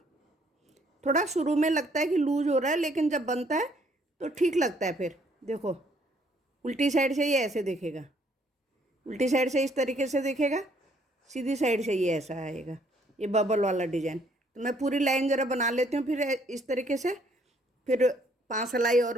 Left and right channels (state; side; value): normal; both; correlation 0.65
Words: थोड़ा शुरू में लगता है कि लूज हो रहा है, लेकिन जब बनता है तो ठीक लगता है। फिर देखो, उल्टी साइड से ये ऐसे दिखेगा, उल्टी साइड से इस तरीके से दिखेगा, सीधी साइड से ये ऐसा आएगा, ये बबल वाला डिजाइन। तो मैं पूरी लाइन ज़रा बना लेती हूँ, फिर इस तरीके से। फिर 5 सिलाई